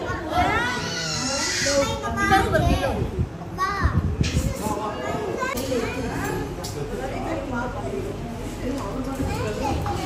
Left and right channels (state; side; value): identical; both; correlation 1.00